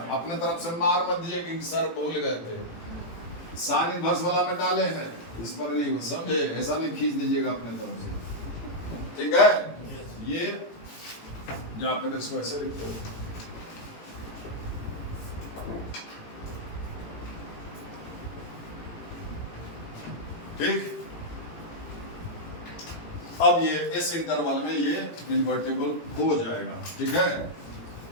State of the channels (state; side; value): late; right; 18 ms